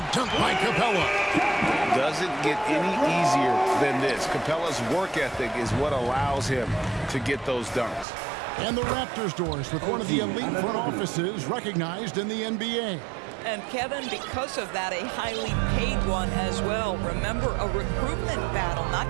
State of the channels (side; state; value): left; drops out; at 8.1 s